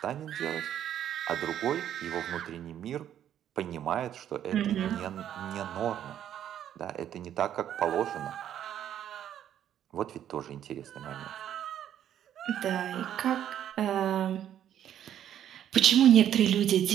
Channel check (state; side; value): quieter; left; 10.5 dB